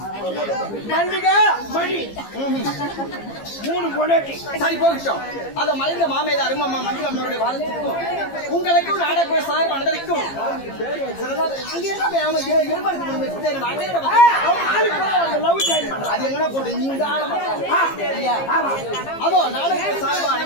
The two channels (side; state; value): right; late; 15 ms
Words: மல்லிகா மணி 3 பொண்டாட்டி. சரி, போகட்டும். அத மறைந்த மாமேதை அருமம்மா மஞ்சுளம்மாவுடைய வாழ்த்துக்கும் உங்களுக்கும் நாடக சார் மனதிற்கும் அது எங்கன்னா போட்டு நீங்க அதோ நாடக சார்பு